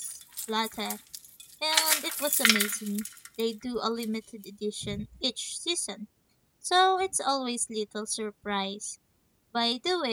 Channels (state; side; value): identical; both; correlation 1.00